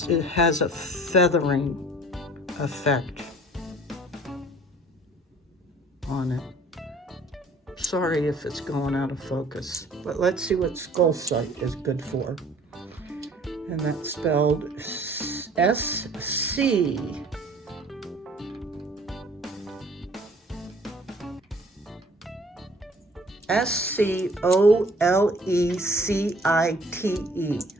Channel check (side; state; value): both; normal; correlation 0.53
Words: it has a feathering effect on it. Sorry if it's going out of focus, but let's see what Skullsite is good for. And that's spelled S-C. S-C-O-L-E-C-I-T-E,